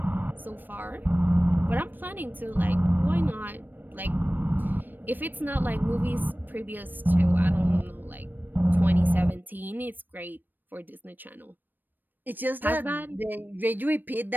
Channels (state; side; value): late; left; 0.091 ms